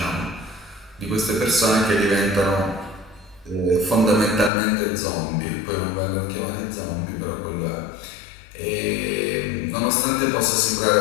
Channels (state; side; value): drops out; right; at 4.5 s